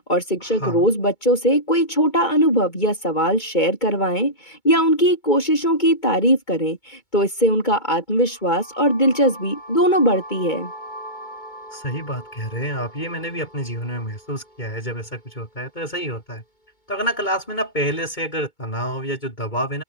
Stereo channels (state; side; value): late; right; 2.2 ms